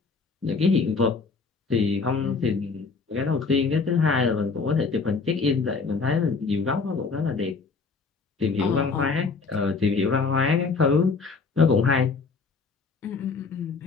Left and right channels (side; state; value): right; quieter; 4.5 dB